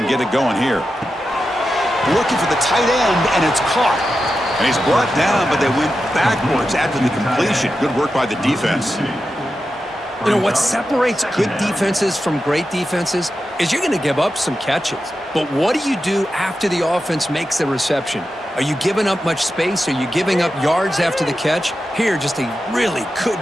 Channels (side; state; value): both; normal; correlation 0.90